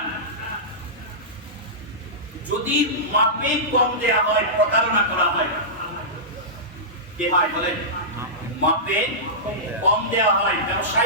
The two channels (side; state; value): both; normal; correlation -0.15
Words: যদি মাপে কম দেয়া হয় প্রতারণা করা হয়। কি হয় বলেন? মাপে কম দেয়া হয়,